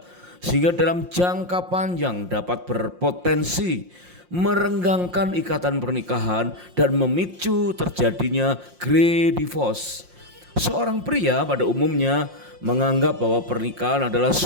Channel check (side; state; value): left; late; 5.6 ms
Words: sehingga dalam jangka panjang dapat berpotensi merenggangkan ikatan pernikahan dan memicu terjadinya grey divorce. Seorang pria pada umumnya menganggap bahwa pernikahan adalah